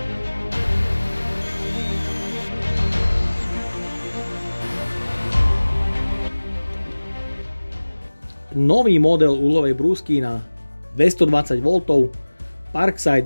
Nový model uhlovej brúsky na 220 V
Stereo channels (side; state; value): both; inverted; correlation -1.00